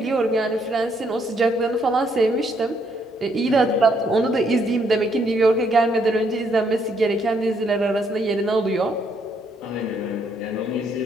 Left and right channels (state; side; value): normal; both; correlation 0.72